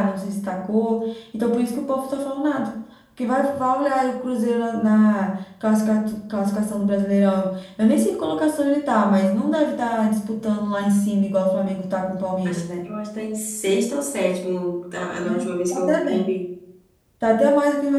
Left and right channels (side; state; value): both; identical; correlation 1.00